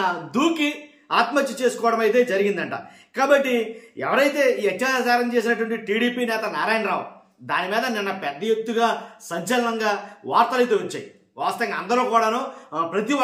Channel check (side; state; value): both; identical; correlation 1.00